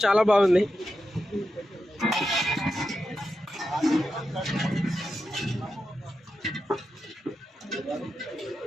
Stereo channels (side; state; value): both; normal; correlation 0.89